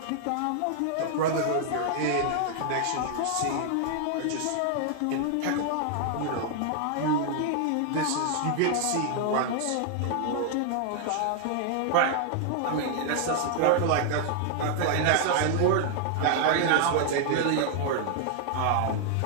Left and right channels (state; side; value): different; both; correlation 0.00